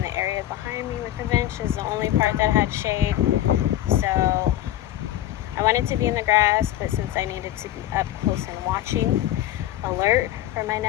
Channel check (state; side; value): quieter; right; 13.4 dB